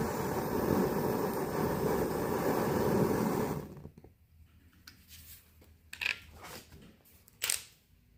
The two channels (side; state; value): both; identical; correlation 1.00